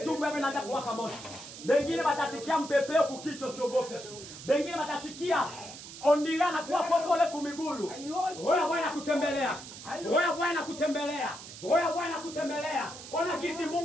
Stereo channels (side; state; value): right; noise; hiss, 13 dB below the sound